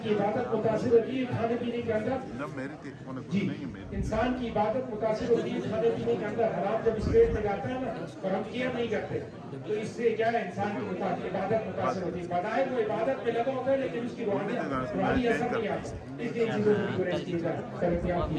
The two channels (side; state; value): both; identical; correlation 1.00